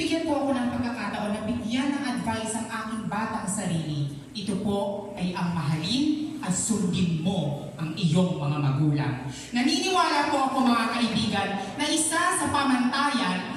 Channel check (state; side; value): identical; both; correlation 1.00